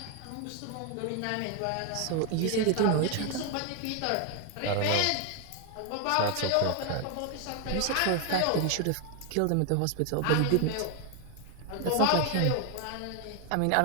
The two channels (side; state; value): both; different; correlation 0.01